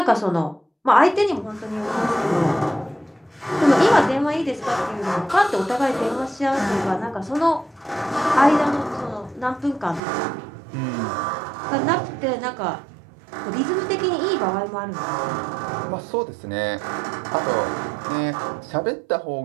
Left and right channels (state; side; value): drops out; left; at 10.0 s